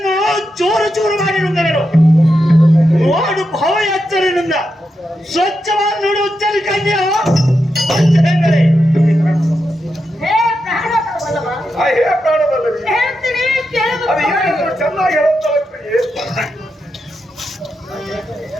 ಚೂರು ಚೂರು ಮಾಡಿರುತ್ತೇನು. ನೋಡು ಭವ ಎಚ್ಚರಿನಿಂದ ಸ್ವಚ್ಛವಾಗಿ ನೋಡಿ ಉಚ್ಚರಿಕೆಯೋ ಚೆನ್ನಾಗಿ ಹೇಳುತ್ತಾ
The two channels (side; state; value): both; normal; correlation 0.86